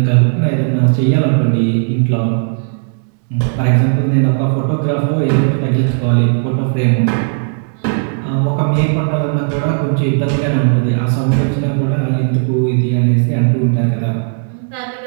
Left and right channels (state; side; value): silent; left; digital silence